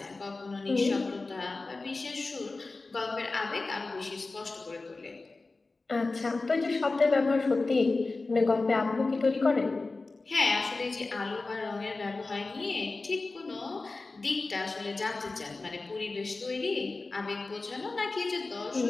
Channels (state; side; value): quieter; right; 3.5 dB